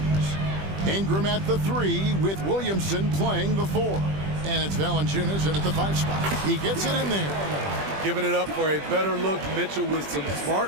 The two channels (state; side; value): late; left; 20 ms